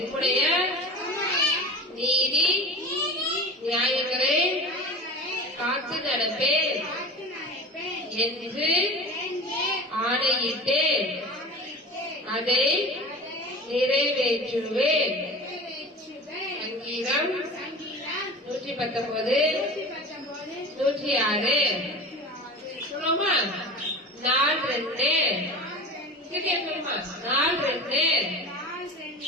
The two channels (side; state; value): both; normal; correlation 0.34